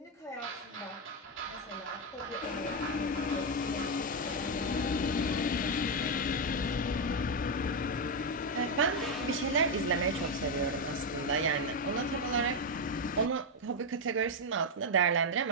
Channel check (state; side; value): normal; both; correlation 0.05